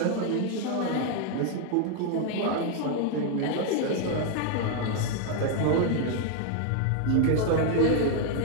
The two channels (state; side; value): different; both; correlation 0.01